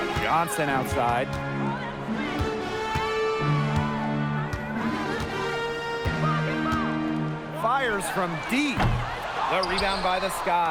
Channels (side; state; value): both; identical; correlation 1.00